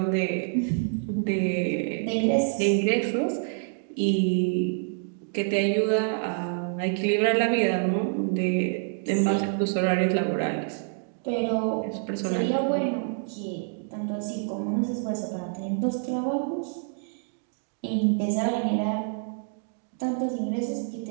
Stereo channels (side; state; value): left; silent; 60 dB below the other